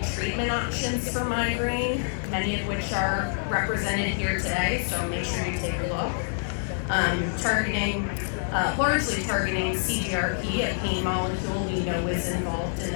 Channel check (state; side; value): silent; right; 60 dB below the other